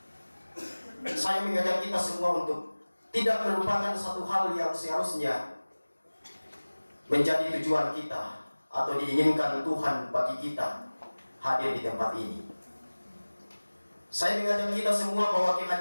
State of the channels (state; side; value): inverted; both; correlation -1.00